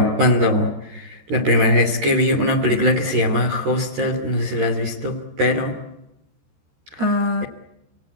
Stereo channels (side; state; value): left; late; 14 ms